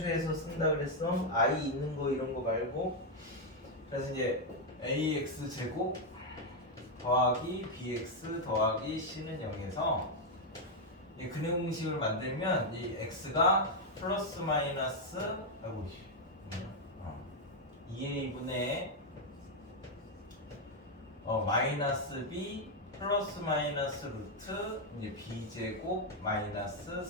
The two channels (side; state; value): both; normal; correlation 0.02